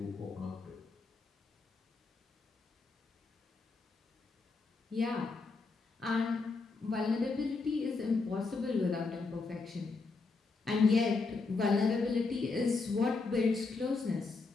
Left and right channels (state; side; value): quieter; right; 4.1 dB